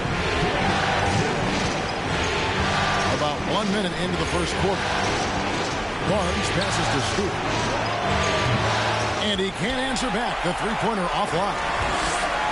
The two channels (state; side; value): identical; both; correlation 1.00